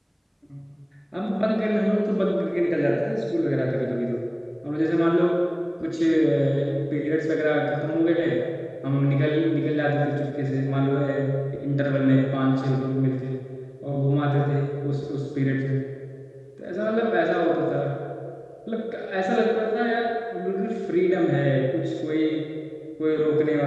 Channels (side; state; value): both; identical; correlation 1.00